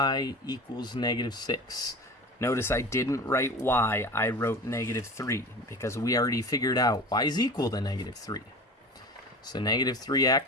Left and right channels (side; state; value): both; normal; correlation 0.34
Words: equals negative 6. Notice I didn't write y, I wrote negative 3, because we already figured out y is equal to negative 3. So negative